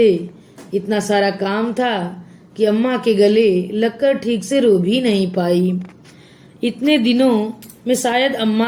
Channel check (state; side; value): identical; both; correlation 1.00